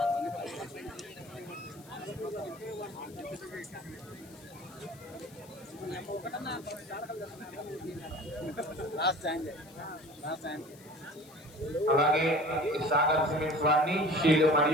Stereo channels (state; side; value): noise; left; hiss, 23 dB below the sound